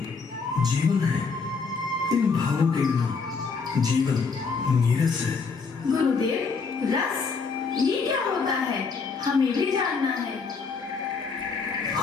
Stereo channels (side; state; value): right; quieter; 4.9 dB